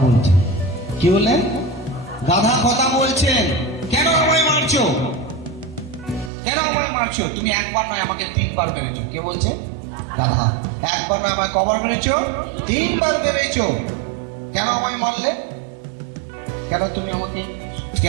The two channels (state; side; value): drops out; left; at 6.3 s